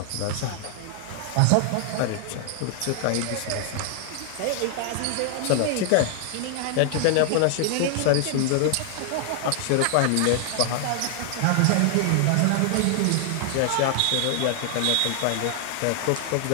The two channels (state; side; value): different; both; correlation 0.00